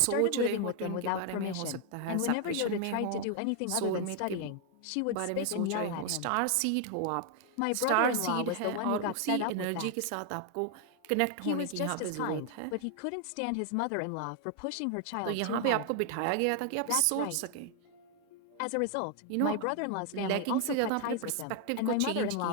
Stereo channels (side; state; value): both; different; correlation 0.00